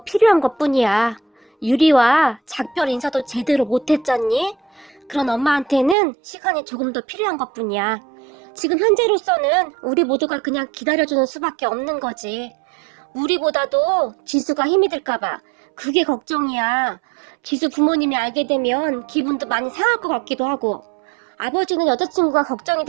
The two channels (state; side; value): drops out; left; at 6.0 s